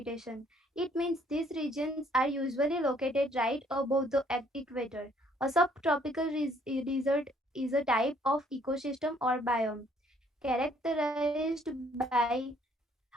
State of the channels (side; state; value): both; normal; correlation 0.64